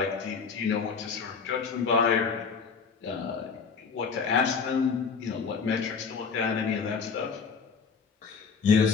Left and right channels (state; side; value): quieter; right; 5.6 dB